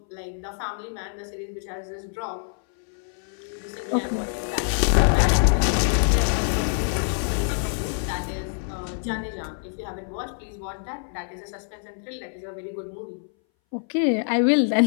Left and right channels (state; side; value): silent; right; 60 dB below the other